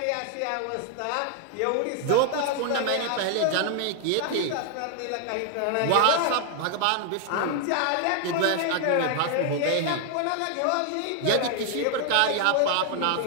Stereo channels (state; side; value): different; both; correlation 0.00